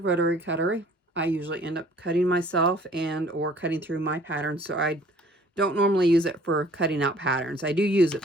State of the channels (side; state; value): both; normal; correlation 0.54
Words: cutter. I usually end up cutting myself and or cutting through my patterns, so I don't normally use it for cutting out patterns. I do use it,